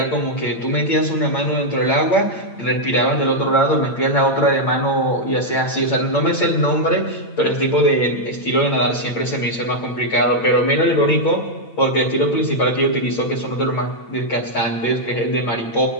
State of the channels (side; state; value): right; late; 8.9 ms